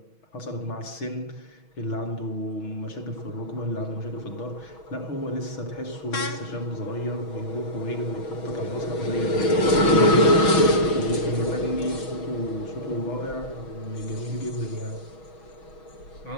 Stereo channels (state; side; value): late; right; 6.2 ms